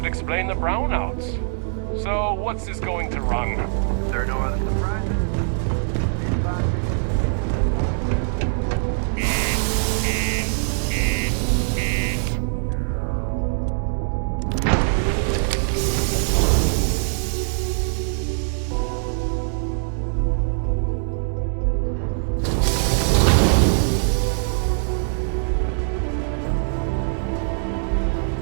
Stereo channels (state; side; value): silent; left; digital silence